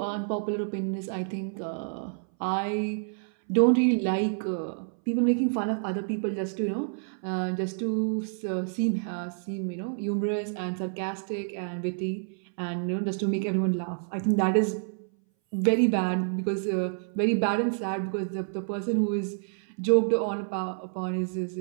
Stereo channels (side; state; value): left; silent; 59 dB below the other